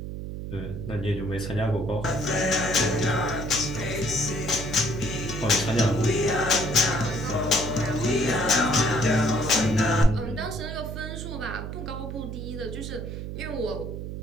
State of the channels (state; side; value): noise; right; hum, 7 dB below the sound